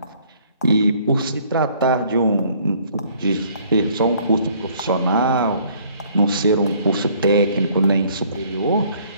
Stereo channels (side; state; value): both; inverted; correlation -0.60